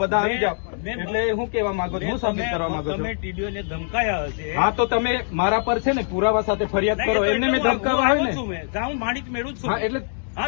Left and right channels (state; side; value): silent; right; digital silence